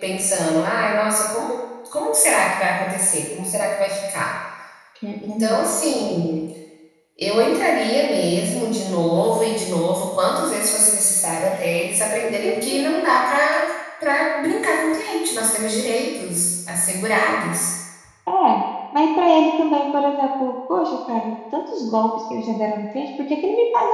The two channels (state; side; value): identical; both; correlation 1.00